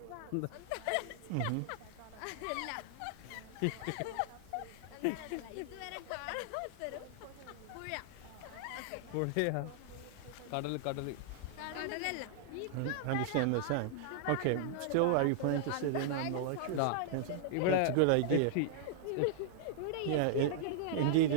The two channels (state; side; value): different; both; correlation -0.01